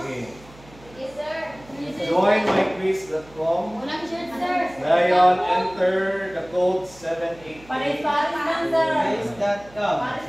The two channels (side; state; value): right; noise; hum, 23 dB below the sound